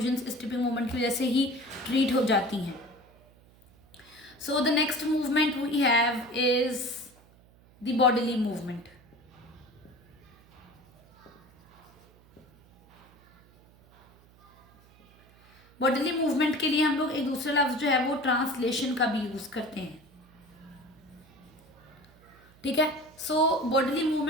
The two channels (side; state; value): right; noise; hum, 28 dB below the sound